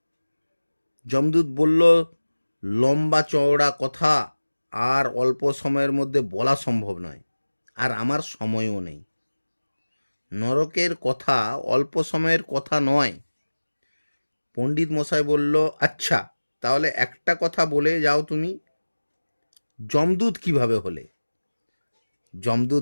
যমদূত বলল, লম্বা চওড়া কথা আর অল্প সময়ের মধ্যে বলা সম্ভব নয়, আর আমার সময়ও নেই। নরকের কথা অল্প সময়ের কথা নয়। পণ্ডিত মশাই বলল, আচ্ছা তাহলে একটা কথা বলে যাও তুমি, যমদূত কিভাবে হলে?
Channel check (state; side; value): inverted; both; correlation -1.00